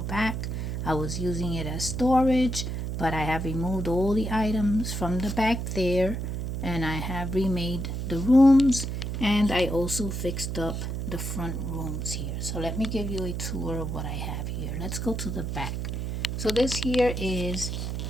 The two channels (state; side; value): noise; right; hum, 3 dB below the sound